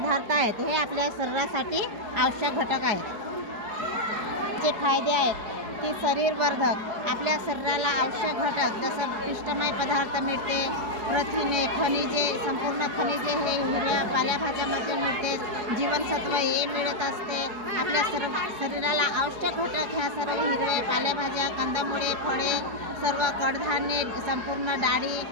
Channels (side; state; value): left; late; 4.8 ms